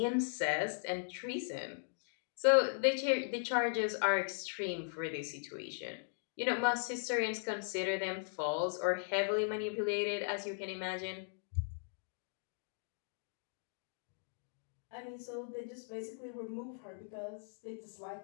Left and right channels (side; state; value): right; silent; digital silence